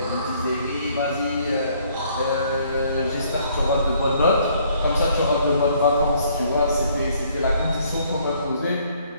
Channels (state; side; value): inverted; both; correlation -0.64